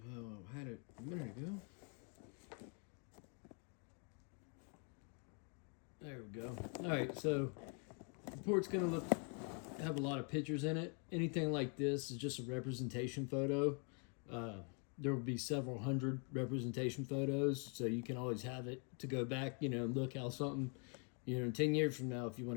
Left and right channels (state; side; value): quieter; right; 38.8 dB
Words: how I had it a minute ago. There we go. All right, so the report's going to have a lot of pictures in it. Anything like this is just a representation photo. There will be several hundred representation photos, so you can always have it to go back, and look how something, 10 years from now, if you